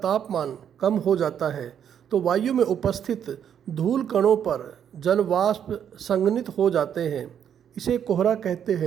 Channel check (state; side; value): quieter; left; 8.9 dB